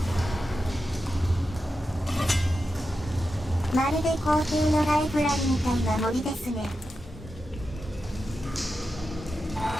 まるで皇帝のライブラリみたいな森ですね。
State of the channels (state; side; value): normal; both; correlation 0.90